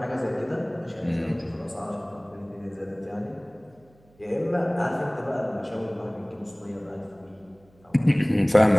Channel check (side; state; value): right; noise; hum, 30 dB below the sound